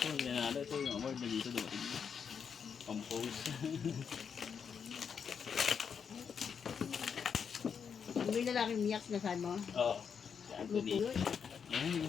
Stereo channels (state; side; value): quieter; right; 6.8 dB